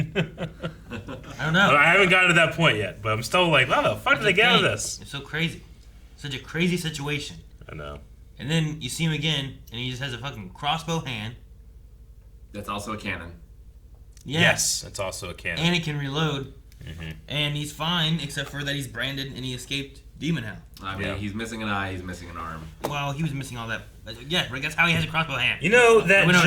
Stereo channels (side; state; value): both; identical; correlation 1.00